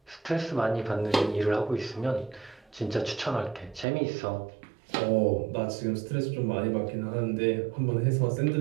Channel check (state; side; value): drops out; left; at 3.9 s